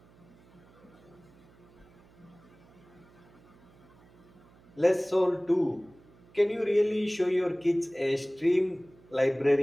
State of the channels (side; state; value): right; noise; hum, 27 dB below the sound